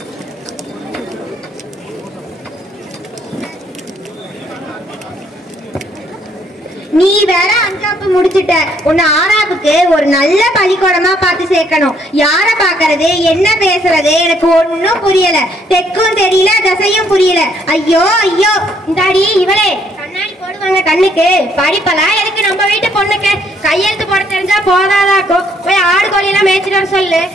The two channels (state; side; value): normal; both; correlation 0.68